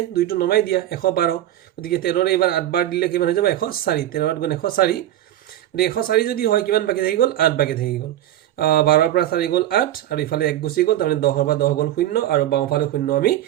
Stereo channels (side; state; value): left; quieter; 12.9 dB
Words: দুইটো নমাই দিয়া 112 গতিকে 13ৰে এবাৰ 8 বাৰ দিলে কিমান হৈ যাব 104 13ত গুণ 104 গতিকে 104 যদি হয় কিমান বাকি থাকি গ'ল 8 বাকি থাকি গ'ল 12ৰ পৰা 4 গ'ল 8 আৰু ইফালে 1 গুচি গ'ল তাৰমানে 10ৰ পৰা 10 গ'ল 0 আৰু বাওঁফালে 0 আমি